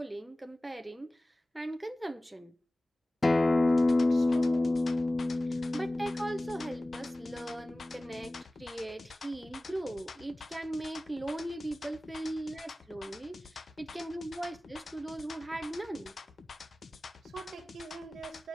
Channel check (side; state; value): both; normal; correlation 0.97